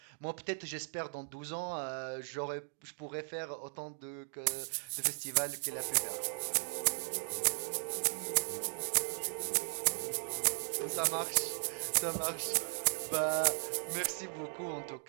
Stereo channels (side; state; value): left; silent; digital silence